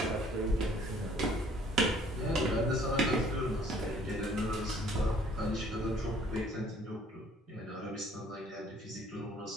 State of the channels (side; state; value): both; normal; correlation 0.58